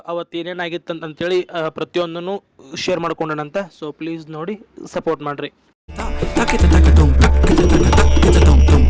ಅವತ್ತು ಏನೇನಾಗಿತ್ತು ಅಂತಂತೇಳಿ ಪ್ರತಿಯೊಂದನ್ನು ಶೇರ್ ಮಾಡ್ಕೊಂಡನಂತೆ. ಸೊ ಪ್ಲೀಸ್ ನೋಡಿ ಸಪೋರ್ಟ್ ಮಾಡಿರಿ.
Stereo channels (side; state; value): both; identical; correlation 1.00